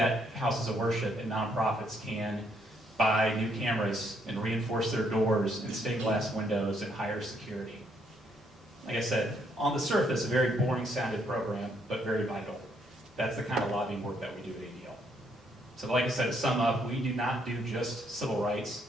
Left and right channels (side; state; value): both; normal; correlation 0.71